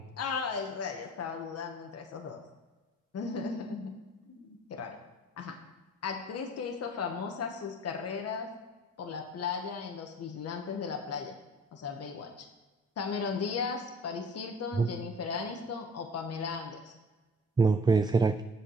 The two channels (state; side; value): normal; both; correlation 0.47